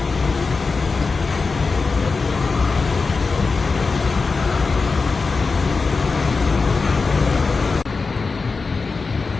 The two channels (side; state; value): right; quieter; 4.3 dB